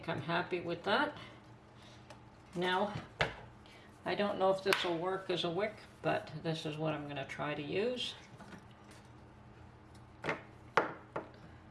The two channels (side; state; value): both; identical; correlation 1.00